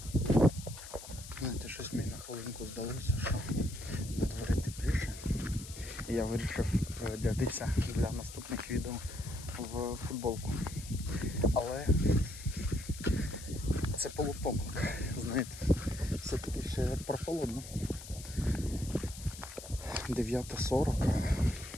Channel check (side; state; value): left; noise; hiss, 13 dB below the sound